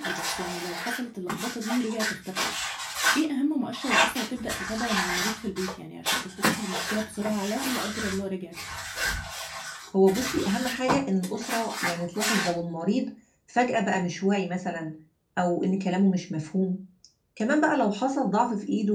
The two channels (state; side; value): identical; both; correlation 1.00